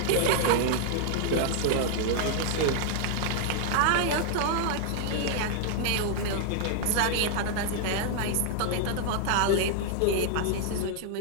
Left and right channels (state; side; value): different; both; correlation 0.00